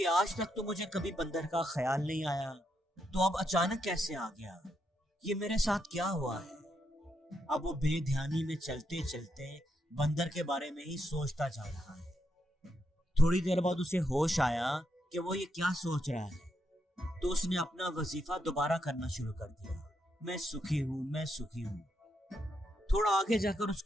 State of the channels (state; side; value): normal; both; correlation 0.80